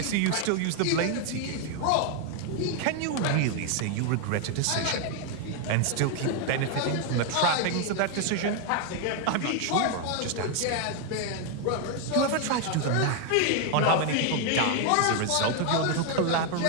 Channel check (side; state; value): both; different; correlation 0.01